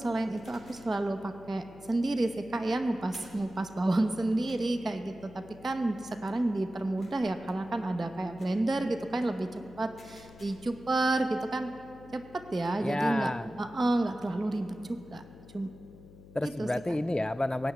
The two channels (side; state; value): left; noise; hum, 19 dB below the sound